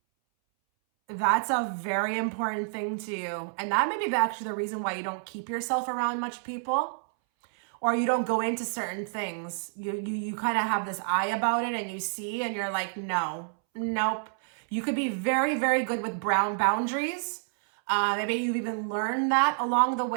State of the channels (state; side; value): silent; left; 59 dB below the other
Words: that's a very important thing to you. And that may be actually the reason why you don't keep yourself around much people, or you don't go into certain things. You kind of have this eye about it and you see and you're like, no, nope. You could be very, very good with boundaries. Maybe you've even learned that along the